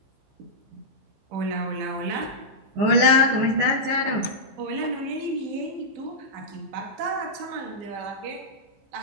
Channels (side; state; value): left; late; 15 ms